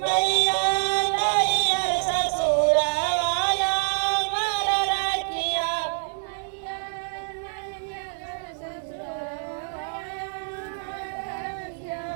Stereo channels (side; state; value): left; silent; 57 dB below the other